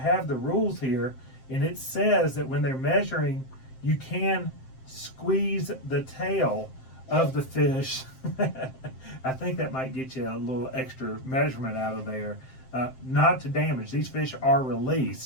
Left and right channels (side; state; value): right; late; 7.6 ms